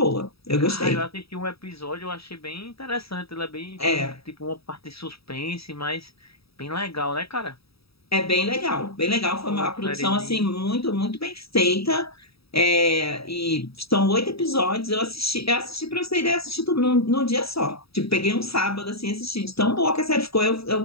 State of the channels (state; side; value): late; right; 0.77 ms